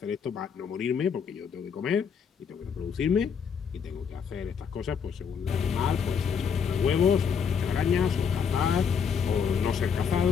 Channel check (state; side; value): quieter; right; 6.7 dB